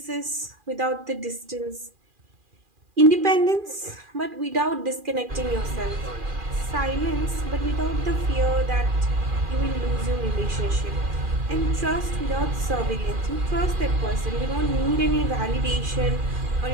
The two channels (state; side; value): late; left; 2.4 ms